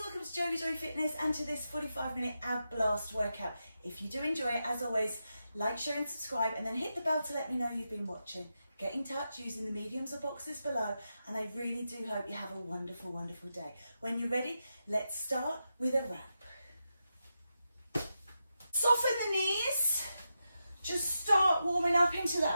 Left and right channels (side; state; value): both; inverted; correlation -0.88